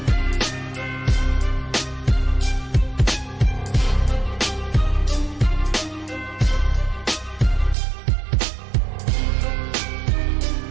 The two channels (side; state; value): left; drops out; at 7.8 s